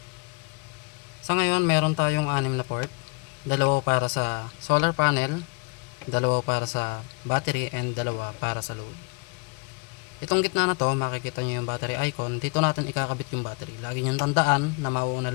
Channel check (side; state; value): right; quieter; 31.2 dB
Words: Sa ngayon, meron tayong 6 na port. Dalawa para sa solar panel, dalawa para sa battery, and dalawa para sa load. Itong gitna na to, makikita nyo yung battery icon. Dito natin ikakabit yung battery. Lagi nyo tandaan na mauuna